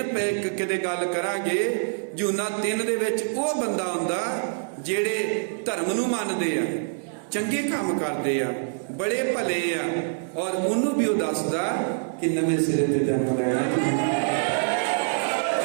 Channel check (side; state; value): left; silent; digital silence